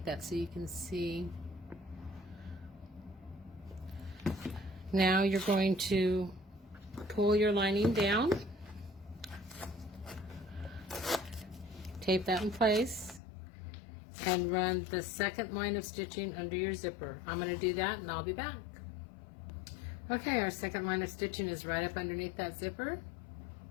that so you can see. Now you're going to pull your lining down, tape that in place, and run the second line of stitching under your zipper. I'm going to do that and I'll be back. Okay, our second line of stitching is right up underneath that zipper.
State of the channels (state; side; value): drops out; right; at 13.2 s